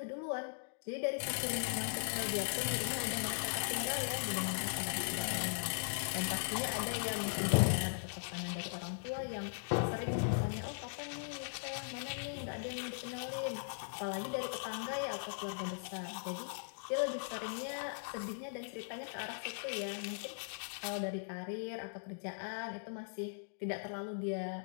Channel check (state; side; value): silent; right; digital silence